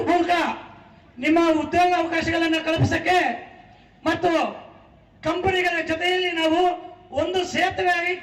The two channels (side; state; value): both; identical; correlation 1.00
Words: ನಿಮ್ಮ ಉದ್ಯೋಗ ಅವಕಾಶಗಳನ್ನು ಕಲ್ಪಿಸಕ್ಕೆ ಮತ್ತು ಕಂಪನಿಗಳ ಜೊತೆಯಲ್ಲಿ ನಾವು ಒಂದು ಸೇತುವೆಯಾಗಿ